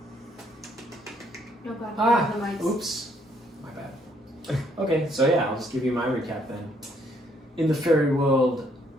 No god, the mics. oops. My bad. Okay, so yeah, I'll just give you my recap then. In the fairy world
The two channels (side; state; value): both; normal; correlation 0.68